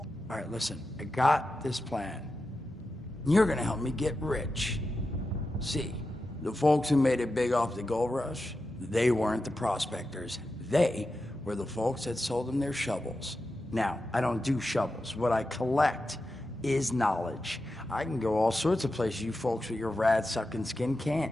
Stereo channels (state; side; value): normal; both; correlation 0.90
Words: All right, listen, I got this plan. You're gonna help me get rich. See, the folks who made it big off the gold rush, they weren't the prospectors. They were the folks that sold them their shovels. Now, I don't do shovels. What I collect is knowledge. I can go all sorts of places you folks with your rad-sucking skin